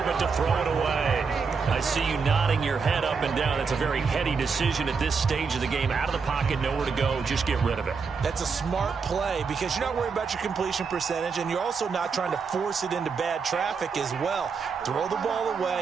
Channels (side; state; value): left; quieter; 5.3 dB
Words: but to throw it away. I see you nodding your head up and down. That's a very heady decision at this stage of the game. Out of the pocket, nowhere to go. Just get rid of it. That's a smart play because you're not worried about your completion percentage, and you're also not trying to force it into bad traffic as well. Throw the ball